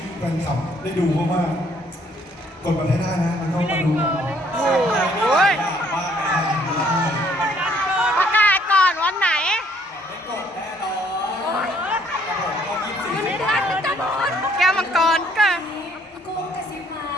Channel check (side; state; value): both; normal; correlation 0.64